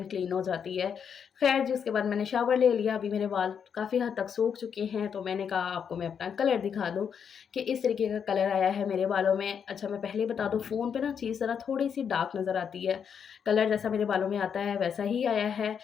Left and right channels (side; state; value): right; quieter; 7.3 dB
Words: क्लीन हो जाती है। ख़ैर जी, उसके बाद मैंने शावर ले लिया, अभी मेरे बाल काफ़ी हद तक सूख चुके हैं, तो मैंने कहा आपको मैं अपना कलर दिखा दूँ कि इस तरीके का कलर आया है मेरे बालों में। अच्छा, मैं पहले ही बता दूँ, फ़ोन पे ना चीज़ ज़रा थोड़ी-सी डार्क नज़र आती है, कलर जैसा मेरे बालों में आता है वैसा ही आया है